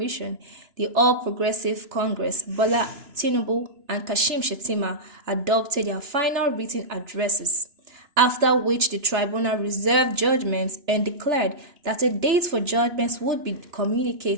the All Progressive Congress, Bola Tinubu, and Kashim Shettima, adopted their final written addresses, after which the tribunal reserved judgments and declared that a date for judgments would be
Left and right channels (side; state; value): left; late; 2.9 ms